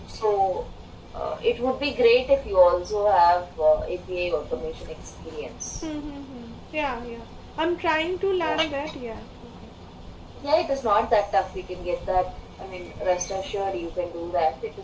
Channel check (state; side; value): identical; both; correlation 1.00